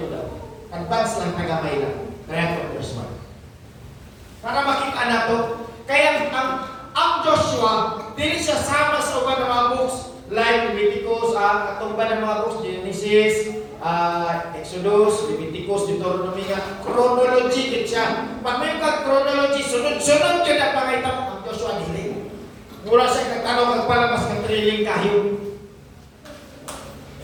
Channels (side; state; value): both; identical; correlation 1.00